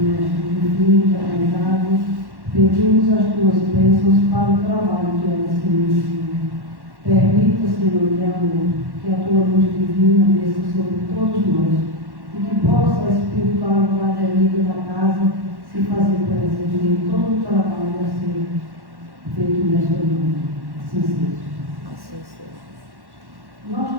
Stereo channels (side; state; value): left; late; 1.1 ms